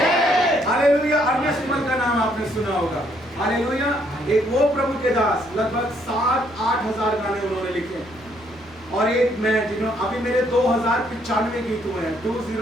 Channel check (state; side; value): normal; both; correlation 0.69